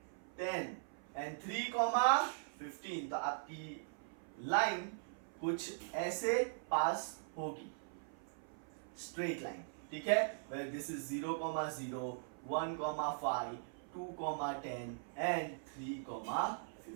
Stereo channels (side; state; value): left; silent; 51 dB below the other